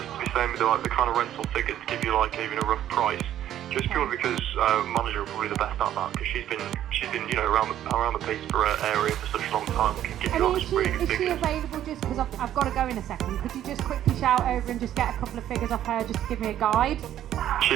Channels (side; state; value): left; quieter; 11.6 dB